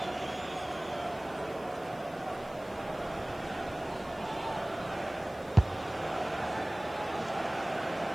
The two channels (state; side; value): noise; left; hiss, 24 dB below the sound